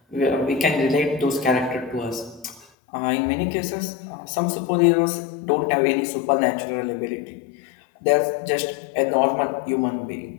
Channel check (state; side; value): drops out; right; at 2.7 s